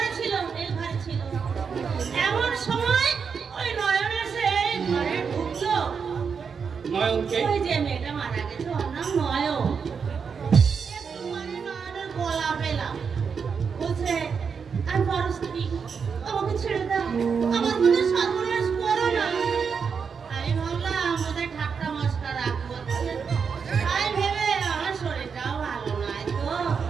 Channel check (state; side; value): quieter; left; 6.1 dB